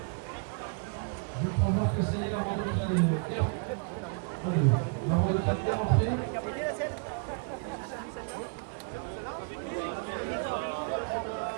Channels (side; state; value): left; quieter; 38.2 dB